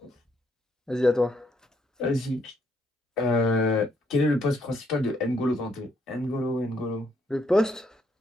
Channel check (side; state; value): both; normal; correlation 0.72